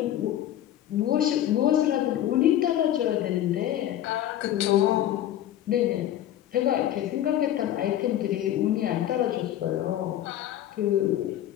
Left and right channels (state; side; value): quieter; right; 12.1 dB